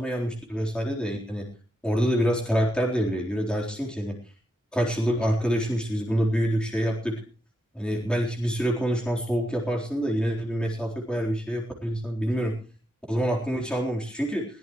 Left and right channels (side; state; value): both; normal; correlation 0.84